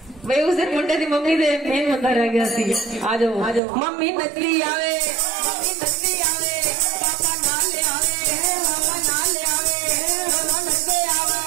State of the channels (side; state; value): left; drops out; at 3.6 s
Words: भाई उस दिन मुंडे दी मम्मी दे मेन बंदा रह गया सी आ जाओ मम्मी नचली आवे